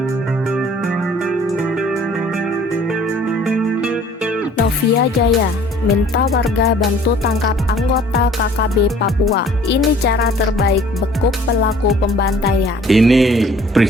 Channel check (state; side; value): normal; both; correlation 0.54